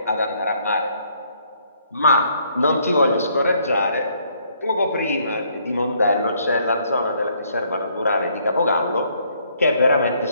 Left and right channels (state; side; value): inverted; both; correlation -0.68